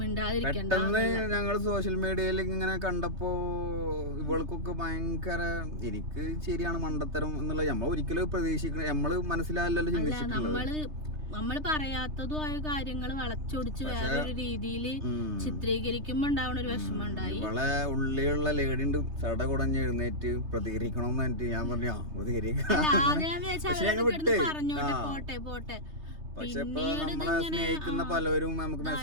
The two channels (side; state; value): left; late; 3.3 ms